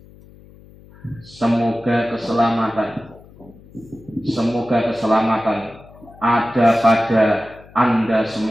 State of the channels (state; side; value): noise; left; hum, 23 dB below the sound